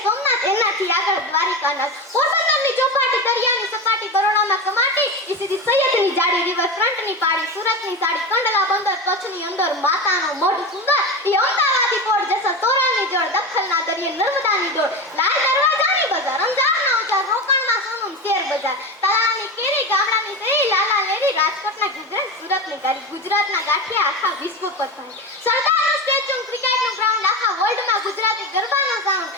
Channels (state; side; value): normal; both; correlation 0.22